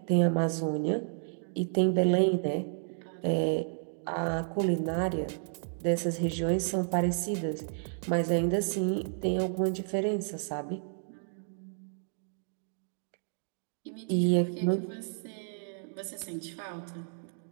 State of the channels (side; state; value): left; silent; digital silence